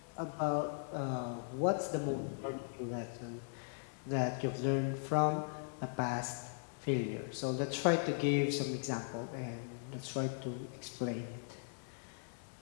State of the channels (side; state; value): right; silent; digital silence